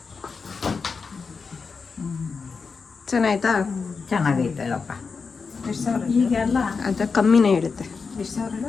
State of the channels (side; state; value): right; quieter; 5.0 dB